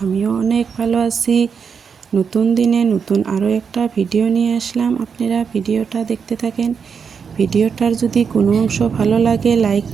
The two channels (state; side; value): quieter; left; 6.3 dB